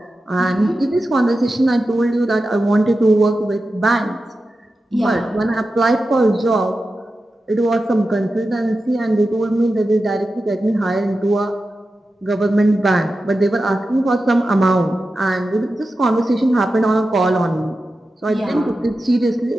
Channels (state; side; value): normal; both; correlation 0.92